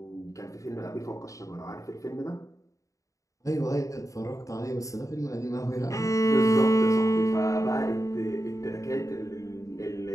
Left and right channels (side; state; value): right; late; 0.16 ms